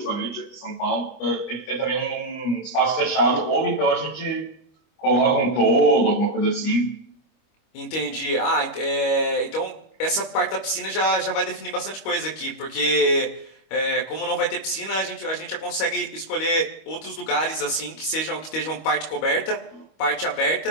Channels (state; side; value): late; right; 25 ms